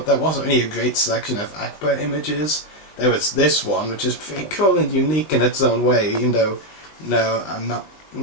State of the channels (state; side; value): late; right; 20 ms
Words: there wasn't really a great selection of Akbar images. There was this one, which is pretty cool and unique in its own way, even though, no, I'm not